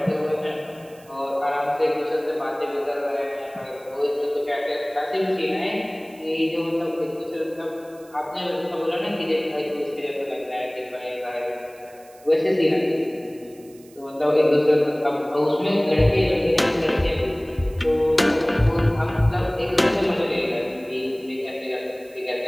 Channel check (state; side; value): noise; right; hiss, 26 dB below the sound